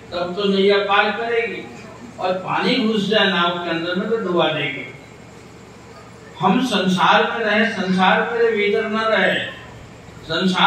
तब तो नैया पार करेगी, और पानी घुस जाए नाव के अंदर में तो डुबा देगी। हम संसार में रहे, संसार मेरे भीतर न रहे।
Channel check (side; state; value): both; identical; correlation 1.00